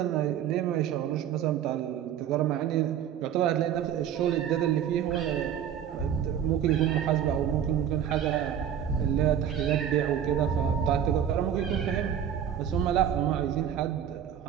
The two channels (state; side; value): quieter; left; 9.4 dB